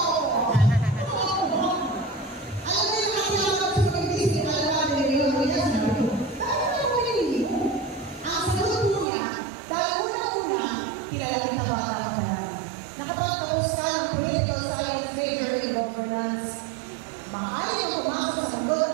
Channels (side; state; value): left; drops out; at 9.1 s